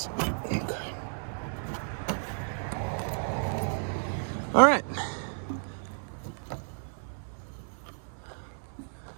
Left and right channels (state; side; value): silent; left; digital silence